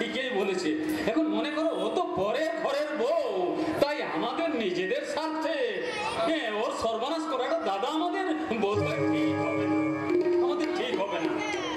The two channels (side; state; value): both; identical; correlation 1.00